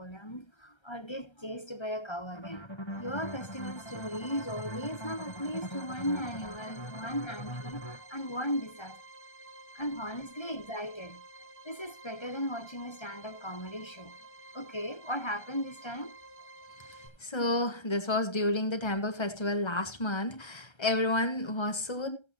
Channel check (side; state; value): right; late; 1.3 ms